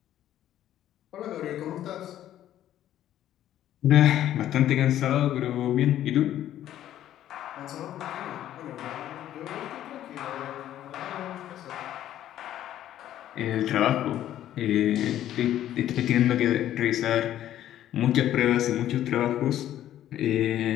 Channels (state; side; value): quieter; right; 12.1 dB